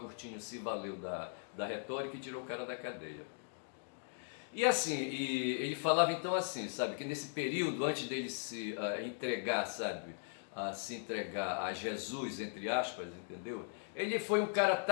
se valeu da retórica e tirou o cara da cadeia. E assim, ele falava então assim, sabe? Que nesse período, antes dele se entregar, sabe? A se entregar a Jesus, entre aspas, entendeu? Ele foi um cara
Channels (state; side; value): silent; right; digital silence